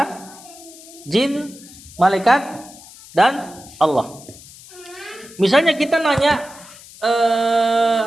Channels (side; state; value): left; noise; hiss, 20 dB below the sound